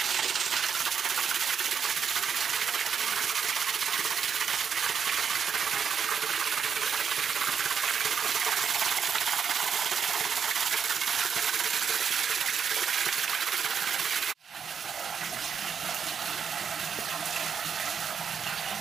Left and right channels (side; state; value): left; quieter; 7.0 dB